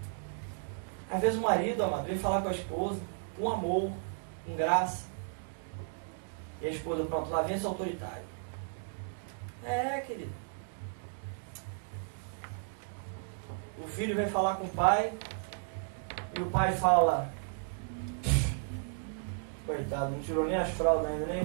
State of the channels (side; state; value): left; silent; digital silence